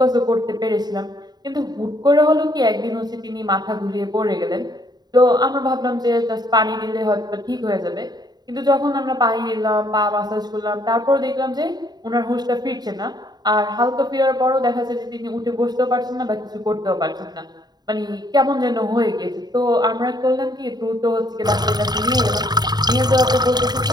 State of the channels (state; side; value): late; left; 0.20 ms